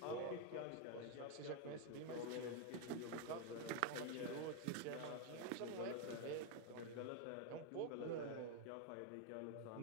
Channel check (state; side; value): different; both; correlation 0.01